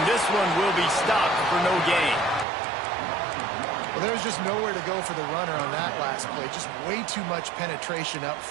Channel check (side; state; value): left; drops out; at 2.5 s